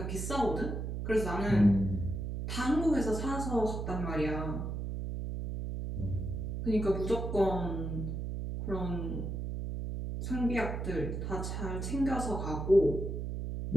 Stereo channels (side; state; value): right; noise; hum, 4 dB below the sound